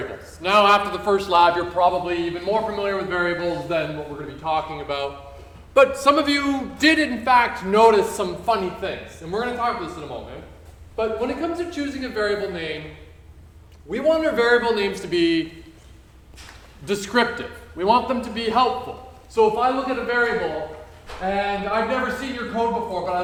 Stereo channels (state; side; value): identical; both; correlation 1.00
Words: Now after the first lab, you're probably even more familiar with variables than what we're going to be talking about. But some of you did in fact notice some funny things, and we're going to talk about this in a moment. But when it comes to choosing a variable name, we want our variable names to be descriptive. We want them to be helpful. So if I look at a variable, and I've never seen your code before, but I